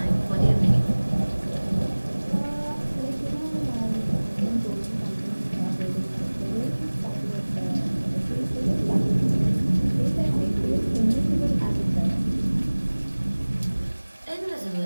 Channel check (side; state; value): both; inverted; correlation -1.00